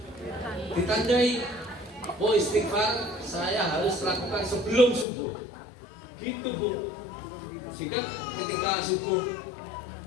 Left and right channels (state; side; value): drops out; right; at 5.1 s